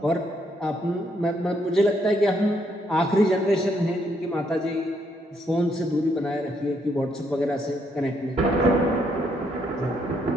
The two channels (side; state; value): both; normal; correlation 0.73